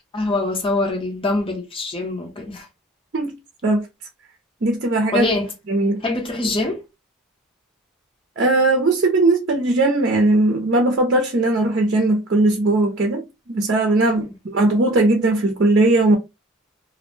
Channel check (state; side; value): normal; both; correlation 0.45